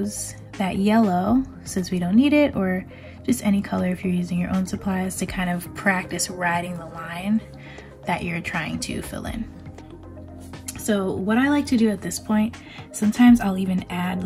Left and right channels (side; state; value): both; identical; correlation 1.00